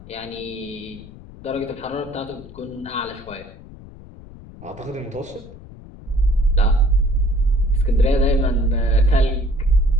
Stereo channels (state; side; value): noise; left; rumble, 18 dB below the sound